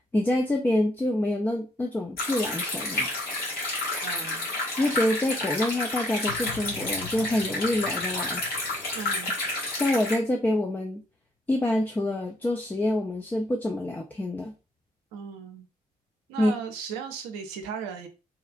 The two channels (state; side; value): normal; both; correlation 0.70